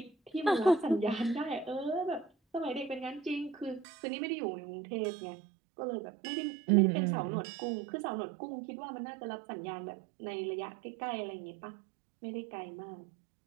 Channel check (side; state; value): left; drops out; at 3.9 s